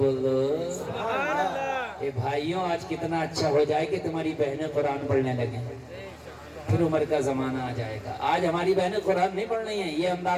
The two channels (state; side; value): identical; both; correlation 1.00